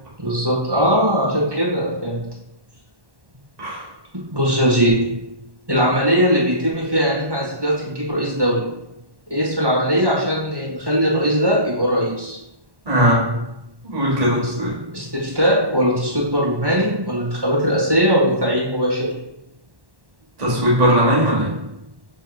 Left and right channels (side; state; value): left; late; 1.1 ms